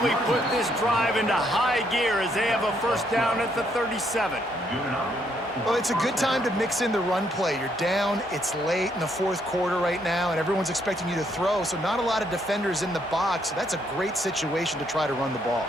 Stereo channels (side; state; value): both; normal; correlation 0.72